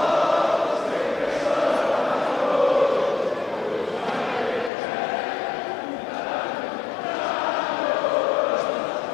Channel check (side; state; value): right; drops out; at 4.7 s